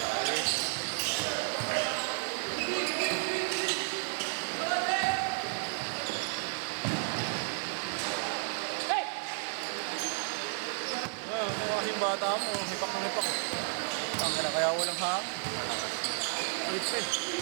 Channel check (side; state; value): left; silent; digital silence